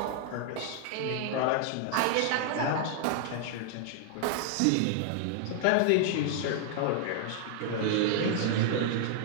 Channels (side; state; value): both; different; correlation -0.01